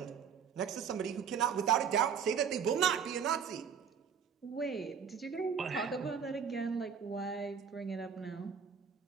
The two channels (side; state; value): left; quieter; 7.1 dB